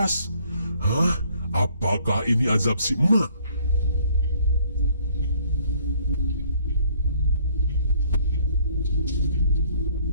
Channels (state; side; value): inverted; both; correlation -0.62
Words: Hah? Apakah ini azab si emak?